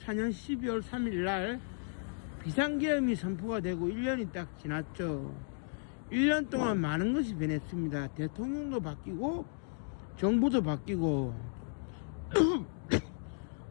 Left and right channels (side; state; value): right; silent; digital silence